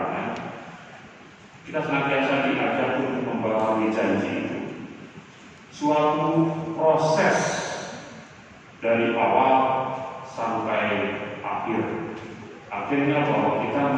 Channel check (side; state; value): both; identical; correlation 1.00